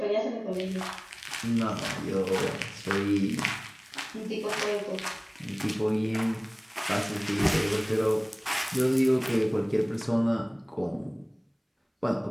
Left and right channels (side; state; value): both; identical; correlation 1.00